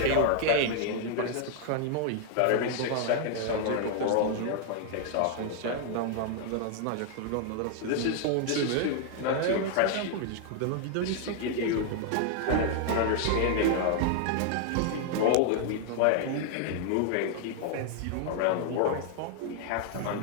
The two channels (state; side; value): different; both; correlation 0.00